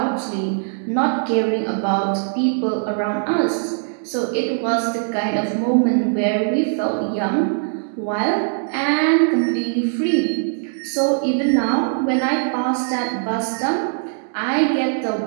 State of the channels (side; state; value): left; silent; digital silence